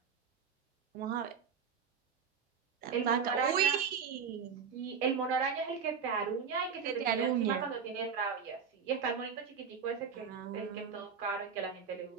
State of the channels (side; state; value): left; quieter; 6.5 dB